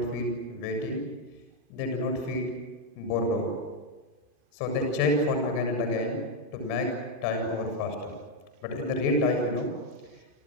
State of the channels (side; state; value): left; late; 2.5 ms